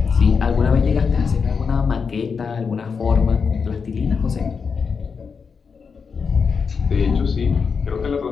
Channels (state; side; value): quieter; right; 5.7 dB